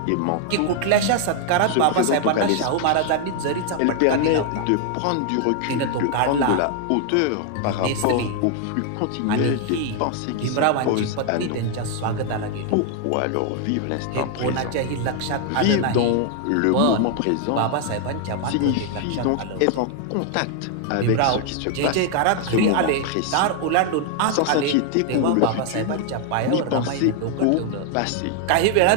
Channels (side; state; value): both; different; correlation 0.00